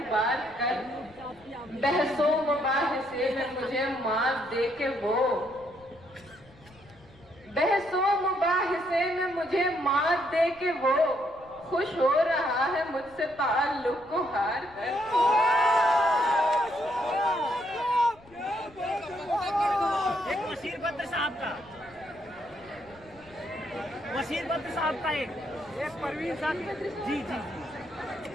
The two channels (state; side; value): noise; left; rumble, 25 dB below the sound